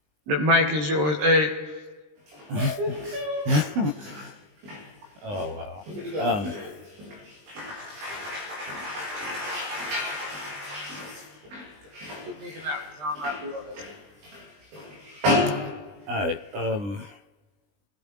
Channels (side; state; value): left; late; 20 ms